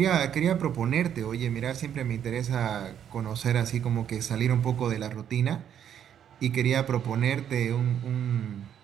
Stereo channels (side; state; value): left; quieter; 9.4 dB